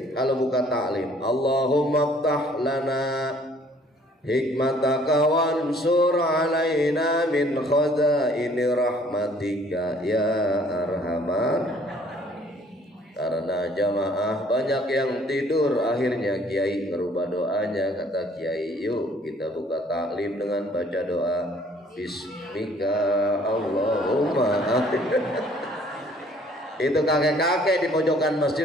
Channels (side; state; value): both; normal; correlation 0.58